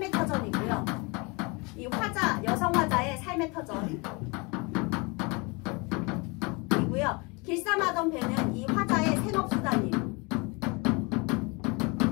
터전이고요. 이 여성 화자의 삶의 터전. 길쌈하던 배는 이 화자의 생업수단이에요.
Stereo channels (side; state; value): right; quieter; 28.7 dB